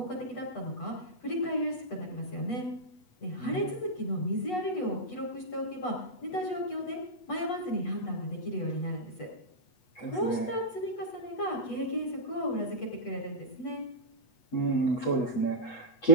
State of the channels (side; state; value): right; late; 8.1 ms